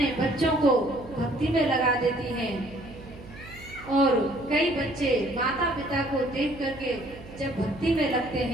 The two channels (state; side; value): noise; right; hum, 18 dB below the sound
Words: बच्चों को भक्ति में लगा देती हैं और कई बच्चे माता पिता को देख करके जब भक्ति में लगते